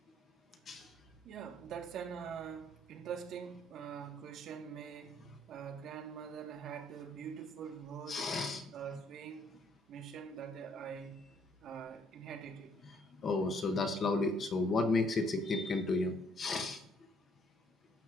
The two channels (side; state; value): both; normal; correlation 0.66